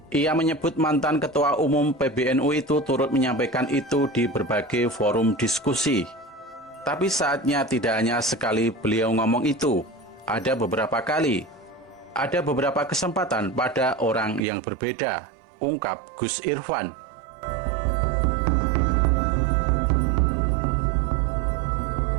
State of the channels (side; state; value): left; drops out; at 14.5 s